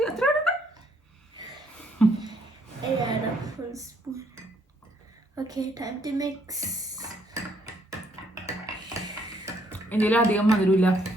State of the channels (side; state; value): both; normal; correlation 0.69